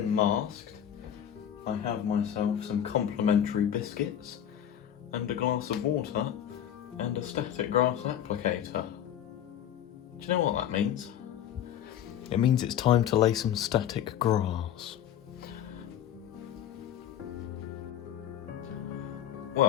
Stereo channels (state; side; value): quieter; right; 10.2 dB